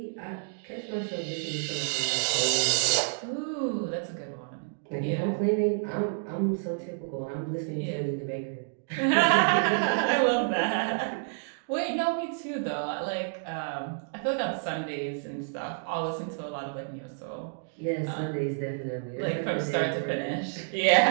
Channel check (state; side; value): silent; left; digital silence